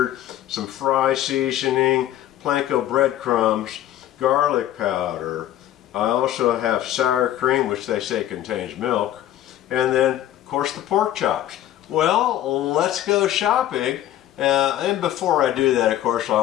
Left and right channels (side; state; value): right; quieter; 12.6 dB